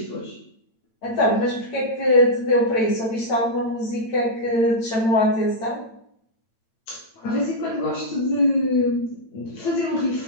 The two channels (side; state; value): right; late; 8.9 ms